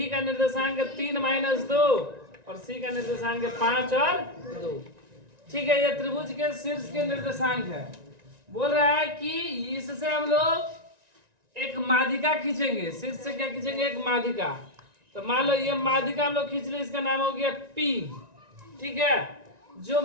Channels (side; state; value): left; late; 1.9 ms